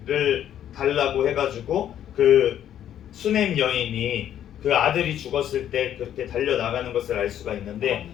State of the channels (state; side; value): quieter; right; 10.6 dB